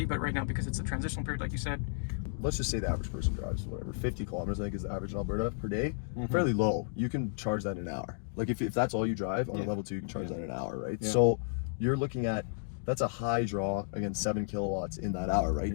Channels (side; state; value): right; silent; digital silence